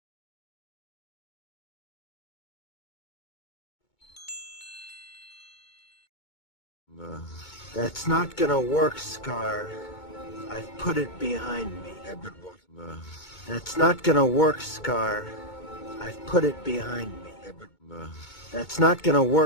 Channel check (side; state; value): right; late; 2.2 ms